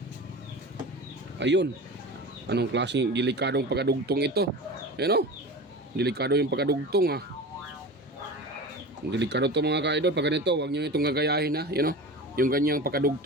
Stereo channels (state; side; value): normal; both; correlation 0.31